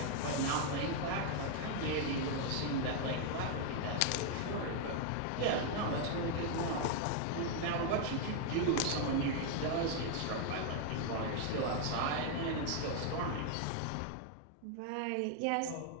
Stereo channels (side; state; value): both; different; correlation 0.00